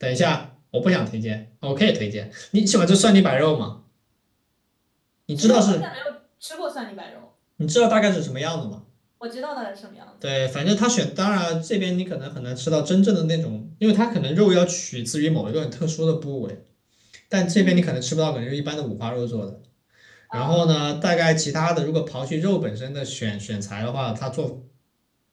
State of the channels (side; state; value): both; identical; correlation 1.00